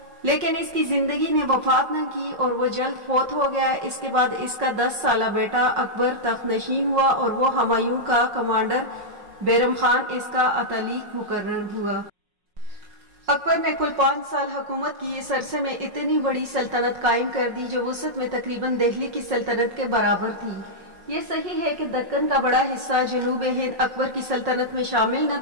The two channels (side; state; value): left; late; 5.5 ms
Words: لیکن اس کی زندگی نے وفات نہ کی اور وہ جلد فوت ہو گیا۔ اس کے بعد اس کا 10 سالہ بیٹا اکبر تخت نشین ہوا اور وہ ہمایوں کا کمانڈر بیرم خان اس کا اتالیق مقرر ہوا۔ اکبر نے کل 5 سال حکومت کی۔ اس عرصے میں اتنی بڑی سلطنت قائم کر دی جو وسعت میں تقریباً دہلی کی سلطنت کے برابر تھی۔ یہ صحیح ہے کہ دکن کا بڑا حصہ جنوب ہند اکبر کی سلطنت میں شامل نہ